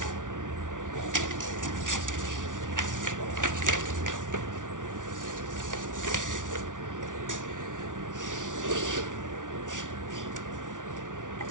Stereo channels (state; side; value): late; left; 0.87 ms